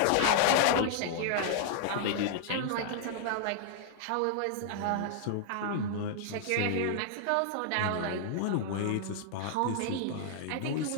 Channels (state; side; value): different; both; correlation 0.00